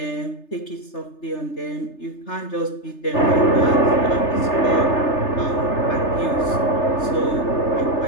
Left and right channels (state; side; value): late; right; 3.3 ms